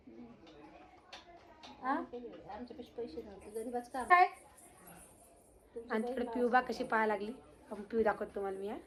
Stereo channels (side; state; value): both; identical; correlation 1.00